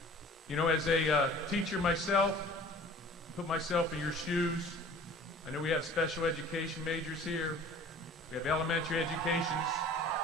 You know, as a teacher myself, put myself in your shoes. I know we have special education majors here. We have elementary educations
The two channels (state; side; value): normal; both; correlation 0.47